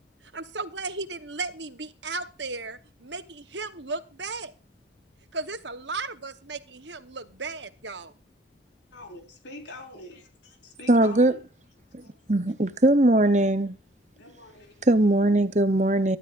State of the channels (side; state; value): both; normal; correlation 0.54